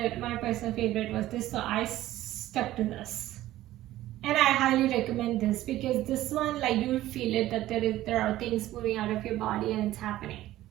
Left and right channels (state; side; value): quieter; left; 14.9 dB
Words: my personal favorite was this, so I stuck to this. And I highly recommend this, because this one, like, you'll feel it, that there are things moving out of your body and it's happening.